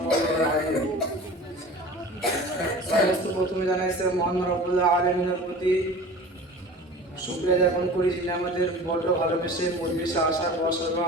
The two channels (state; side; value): normal; both; correlation 0.38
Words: عليه وسلم. সমস্ত প্রথমে জানাইছে মহান রব্বুল আলামিনের প্রতি শুকরিয়া জ্ঞাপন করি, যিনি আমাদের বড় ভালোবেসে পরিবেশে আসার বসার বা